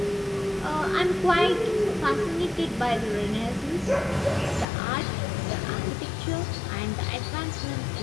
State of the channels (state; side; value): drops out; right; at 4.7 s